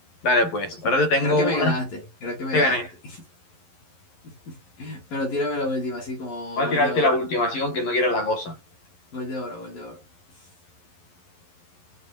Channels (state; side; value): late; right; 11 ms